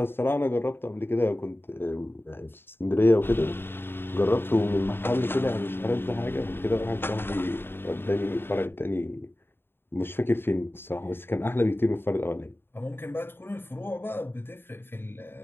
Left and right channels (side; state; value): right; late; 0.11 ms